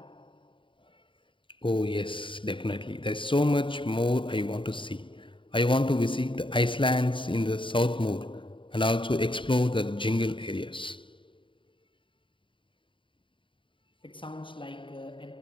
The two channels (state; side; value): late; right; 0.25 ms